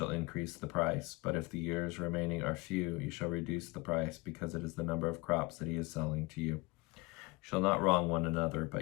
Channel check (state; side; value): quieter; right; 24.1 dB